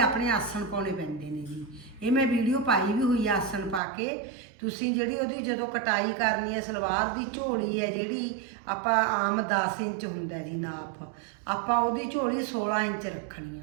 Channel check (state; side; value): drops out; left; at 3.8 s